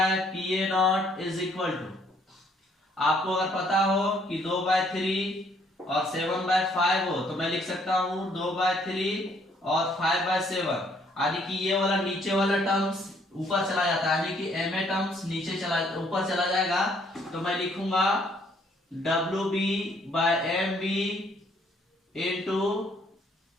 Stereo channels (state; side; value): normal; both; correlation 0.65